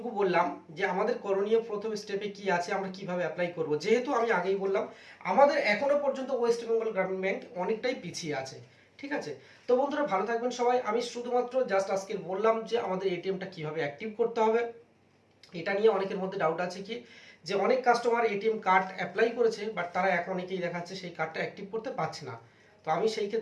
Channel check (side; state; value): both; identical; correlation 1.00